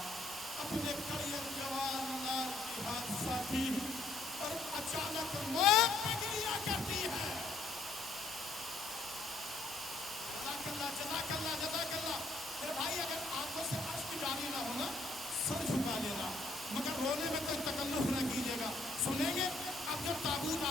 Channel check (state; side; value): quieter; right; 3.0 dB